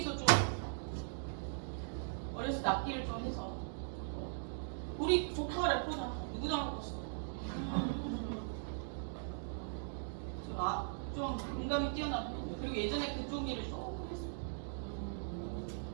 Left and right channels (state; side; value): silent; left; digital silence